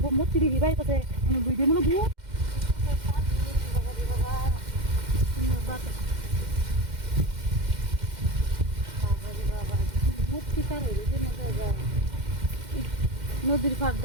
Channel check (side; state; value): left; late; 2.1 ms